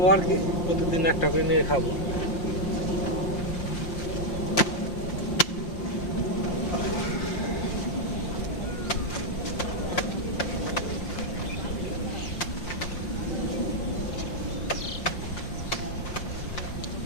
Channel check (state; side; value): late; right; 5.7 ms